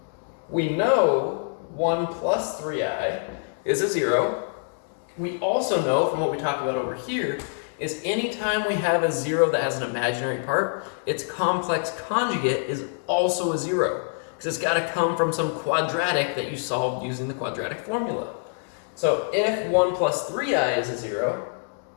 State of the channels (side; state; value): right; silent; digital silence